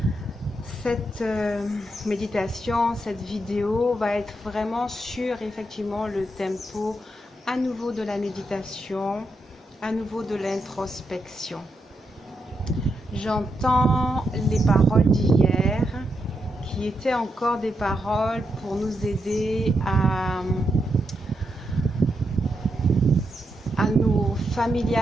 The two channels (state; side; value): normal; both; correlation 0.83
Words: Cette méditation, cette vidéo va être vraiment sur effectivement le tempo à nouveau de la méditation, à nouveau de l'introspection. J'entends les paroles d'hier qui étaient encore des paroles pour nous aider à nous